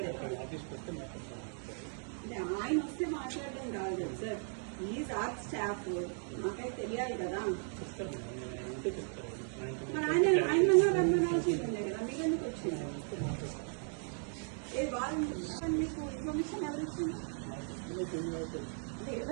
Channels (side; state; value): left; silent; 53 dB below the other